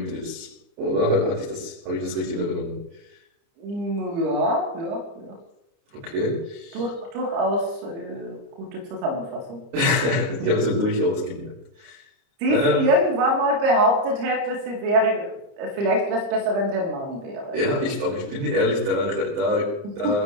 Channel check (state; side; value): late; left; 29 ms